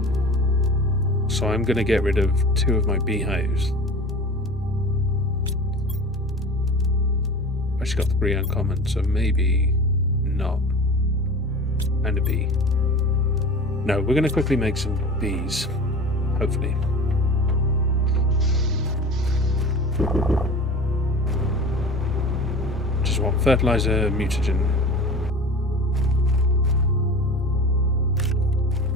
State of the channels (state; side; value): normal; both; correlation 0.36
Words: So I'm going to get rid of 2 of my beehives. I've actually got 3 uncommon, so maybe not. And a bee. No, we're going to quickly make some bees. Hopefully. Just want fertilizer, mutagen.